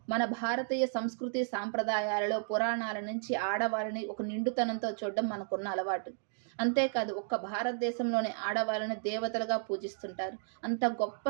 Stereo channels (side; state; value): left; silent; digital silence